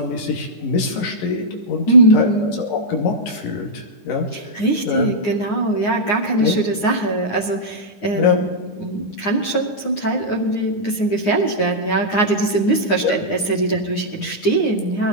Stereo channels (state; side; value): late; right; 9.7 ms